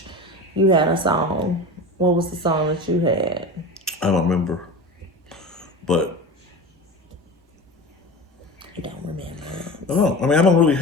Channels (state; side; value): normal; both; correlation 0.30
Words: You had a song. What was the song that you had? I don't remember, but You don't remember. I don't. I mean, I don't really